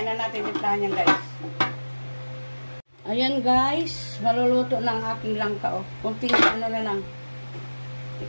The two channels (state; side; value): inverted; both; correlation -1.00